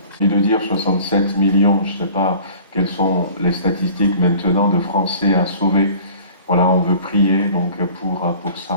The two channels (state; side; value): inverted; both; correlation -0.46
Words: et de dire 67 millions, je ne sais pas quelles sont les statistiques maintenant de Français à sauver. Voilà, on veut prier donc pour